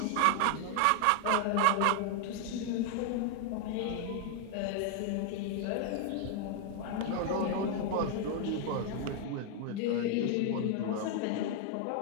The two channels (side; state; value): both; different; correlation 0.00